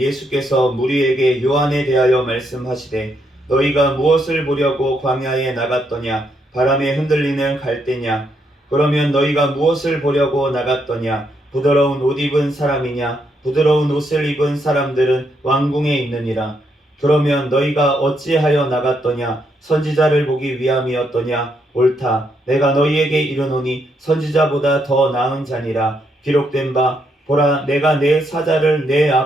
무리에게 요한에 대하여 말씀하시되 너희가 무엇을 보려고 광야에 나갔더냐? 바람에 흔들리는 갈대냐? 그러면 너희가 무엇을 보려고 나갔더냐? 부드러운 옷 입은 사람이냐? 부드러운 옷을 입은 사람들은 왕궁에 있느니라. 그러면 너희가 어찌하여 나갔더냐? 선지자를 보기 위함이었더냐? 옳다. 내가 너희에게 이르노니 선지자보다 더 나은 자니라. 기록된 바 보라, 내가 내 사자를 내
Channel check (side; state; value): both; normal; correlation 0.77